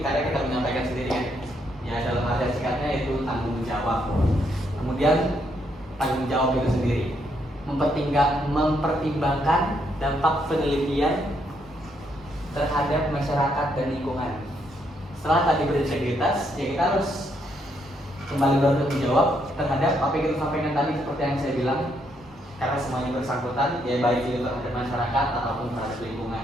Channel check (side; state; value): both; normal; correlation 0.75